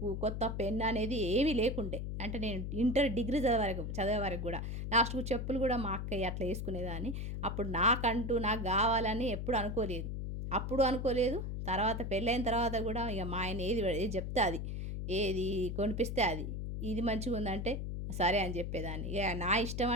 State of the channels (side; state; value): left; noise; hum, 4 dB below the sound